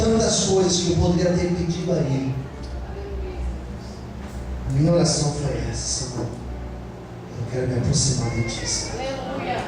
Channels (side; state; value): both; identical; correlation 1.00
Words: coisas que eu poderia ter pedido a Ele, a minha oração foi essa: Senhor, eu quero me aproximar de Ti.